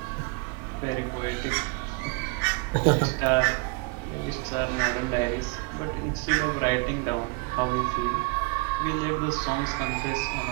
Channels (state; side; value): quieter; left; 28.7 dB